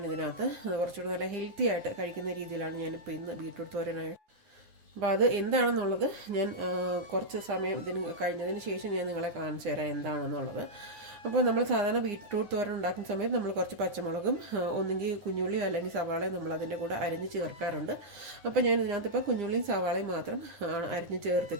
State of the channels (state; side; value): late; left; 9.4 ms